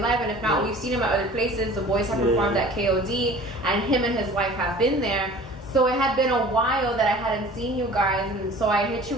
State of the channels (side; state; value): both; normal; correlation 0.44